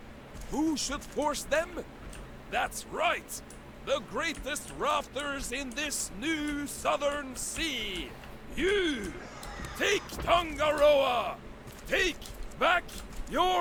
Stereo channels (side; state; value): both; identical; correlation 1.00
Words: Who should force them? That's right! The greatest rafters in this new southern sea! You! Take Tangaroa! Take back